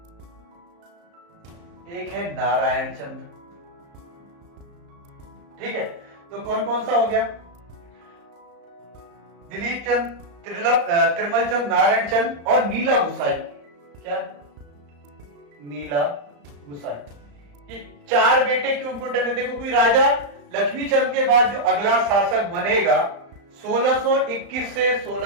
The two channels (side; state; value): left; late; 35 ms